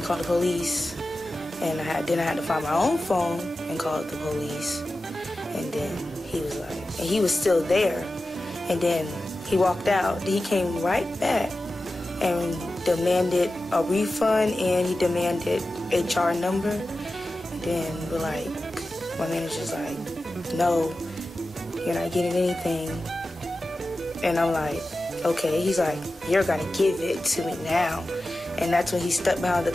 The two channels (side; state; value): both; normal; correlation 0.94